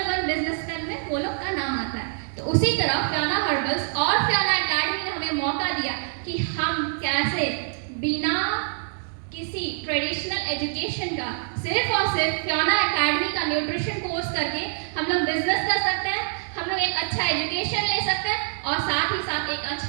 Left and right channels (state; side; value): silent; left; 62 dB below the other